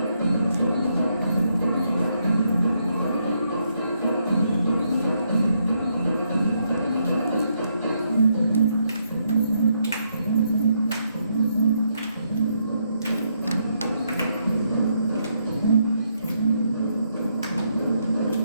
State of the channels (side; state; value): both; inverted; correlation -0.77